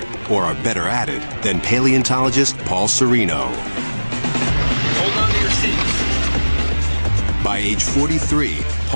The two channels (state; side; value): inverted; both; correlation -1.00